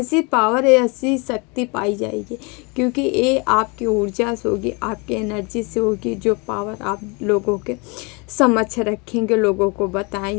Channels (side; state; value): right; quieter; 30.0 dB